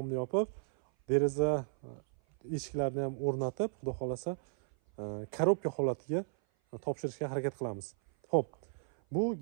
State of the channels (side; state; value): left; silent; 55 dB below the other